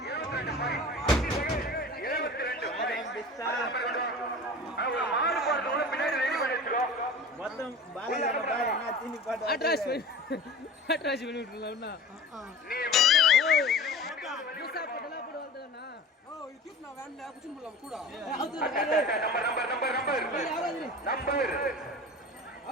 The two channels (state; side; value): normal; both; correlation 0.37